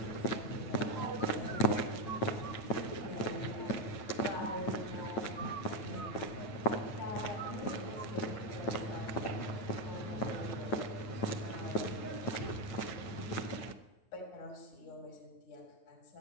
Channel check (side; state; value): right; late; 9.5 ms